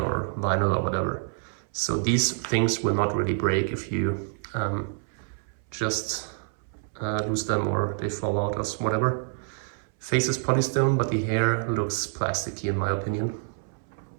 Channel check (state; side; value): silent; left; 60 dB below the other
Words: or vinyl or whatever. So these things will not really break if you just lose them or they fall out or whatever. Face is polystone, but the hair looks plasticky in my opinion.